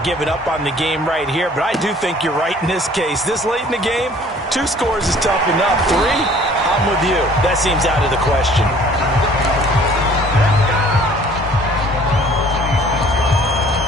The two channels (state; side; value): normal; both; correlation 0.53